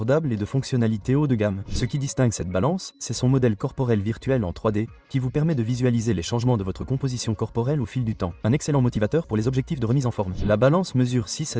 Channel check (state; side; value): identical; both; correlation 1.00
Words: et de fonctionnalités haut de gamme. Ce qui distingue cette balance, c'est son modèle corporel virtuel en 3D, qui vous permet de visualiser les changements de votre composition corporelle au fil du temps. Un excellent motivateur pour les objectifs de remise en forme. La balance mesure 6